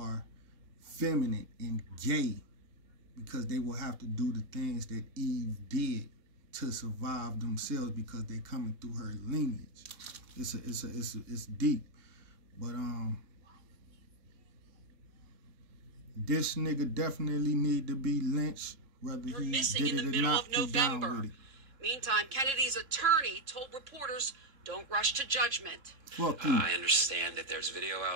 feminine and gay, because they will have to do the things that Eve did to survive themselves because they coming through her lineage. It's deep. But this nigga definitely need to be lynched. Whether You're he missing did in it the or middle not, of November. it. Meantime, Kennedy's attorney told reporters, don't rush to judgment. Fuck you. I understand that there's video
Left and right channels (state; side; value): late; left; 3.6 ms